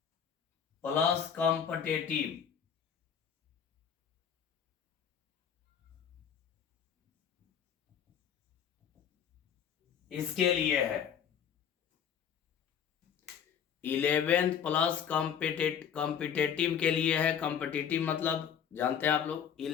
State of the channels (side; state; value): right; quieter; 8.2 dB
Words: प्लस कॉम्पिटेटिव, इसके लिए है। 11th प्लस कॉम्पिटेटिव के लिए है। कॉम्पिटेटिव मतलब जानते हैं आप लोग,